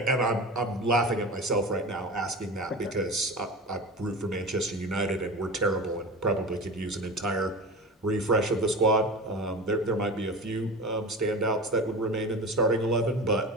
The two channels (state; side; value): normal; both; correlation 0.30